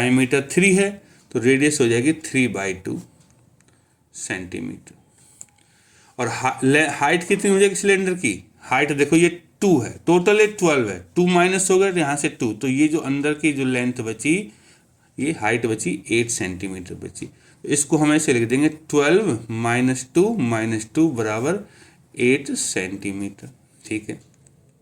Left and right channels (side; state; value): both; identical; correlation 1.00